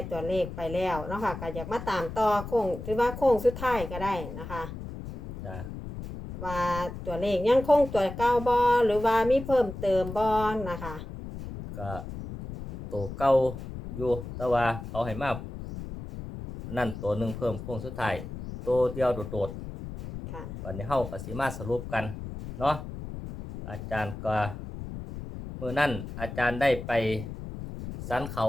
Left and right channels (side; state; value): left; noise; rumble, 9 dB below the sound